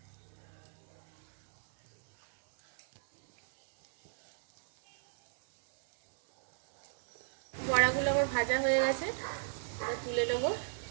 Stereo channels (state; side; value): silent; left; 55 dB below the other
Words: ভাজা হয়ে গেছে, এটা তুলে নেবো।